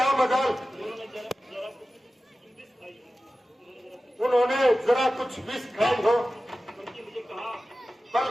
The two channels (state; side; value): normal; both; correlation 0.95